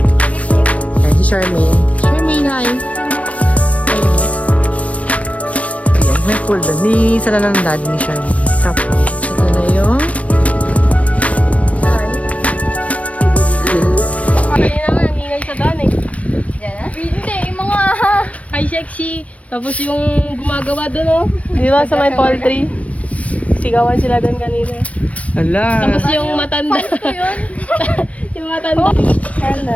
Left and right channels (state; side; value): late; right; 0.065 ms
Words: Ayan, si Charmaine. Charmaine, hi! Ayan, may pool doon. Ni sila ng dad ni Charmaine. Tapos, ito na yung... Kanina nga, ang ingay sa daan eh. Hindi, yung mga high sexy. Tapos yung gumagawa doon oh. Di ba sa may poultry? Sigawan sila doon kanina. Ala! Tapos yung matanda. Yung matanda.